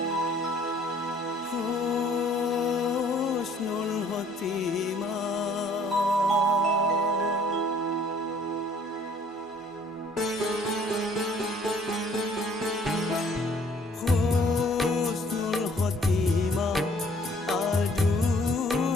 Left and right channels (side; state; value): both; normal; correlation 0.59